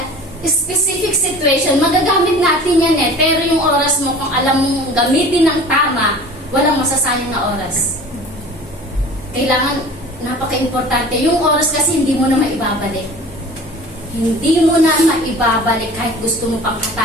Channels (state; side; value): normal; both; correlation 0.42